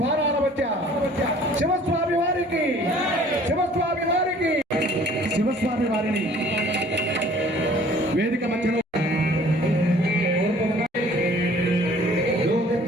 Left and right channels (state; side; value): normal; both; correlation 0.53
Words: మధ్య శివస్వామి వారికి శివస్వామి వారిని వేదిక మధ్యలో